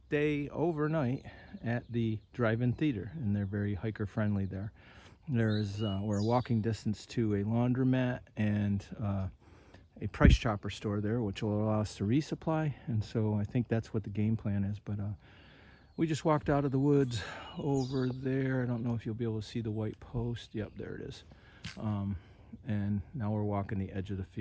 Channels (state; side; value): identical; both; correlation 1.00